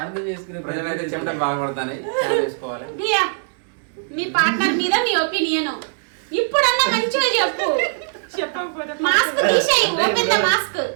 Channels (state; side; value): silent; left; 65 dB below the other